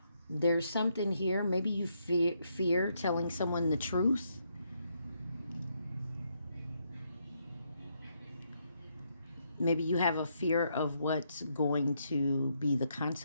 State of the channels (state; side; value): inverted; both; correlation -0.76